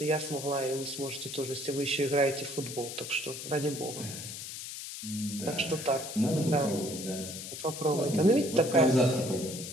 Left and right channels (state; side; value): noise; left; hiss, 9 dB below the sound